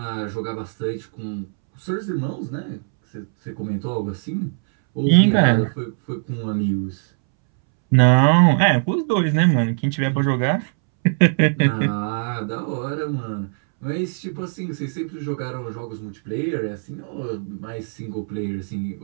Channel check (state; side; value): silent; left; 64 dB below the other